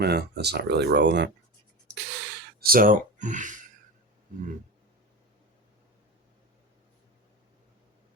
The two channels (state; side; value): normal; both; correlation 0.25